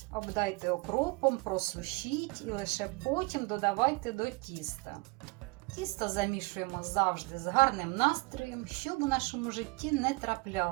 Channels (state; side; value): quieter; left; 27.6 dB